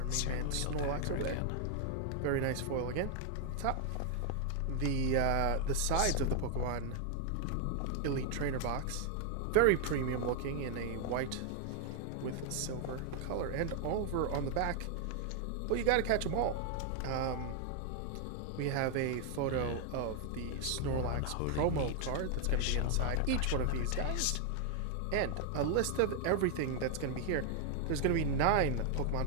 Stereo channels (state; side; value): different; both; correlation 0.00